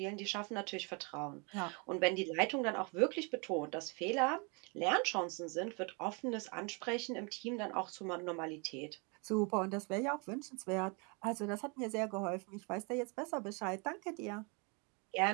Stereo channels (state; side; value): quieter; left; 32.7 dB